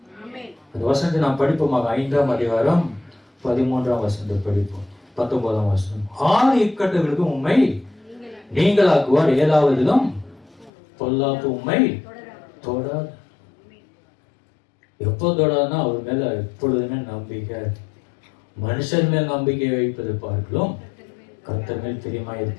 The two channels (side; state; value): right; drops out; at 10.7 s